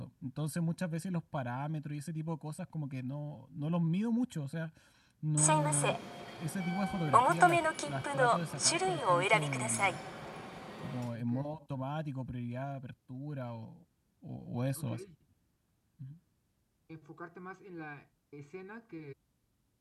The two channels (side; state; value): both; identical; correlation 1.00